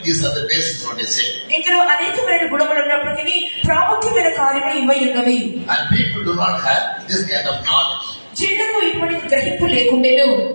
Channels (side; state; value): both; inverted; correlation -1.00